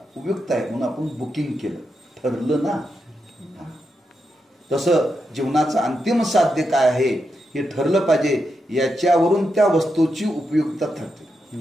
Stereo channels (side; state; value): both; normal; correlation 0.85